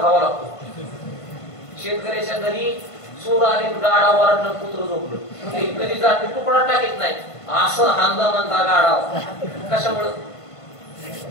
खावा लागतो. शेतकऱ्याच्या घरी चोर आले, गाडा वरडलं, कुत्र झोपलं, कधी जाते तुकडा टाकीत नाही, असं हांदा म्हणता गाडा. कशामुळं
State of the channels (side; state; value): right; late; 1.5 ms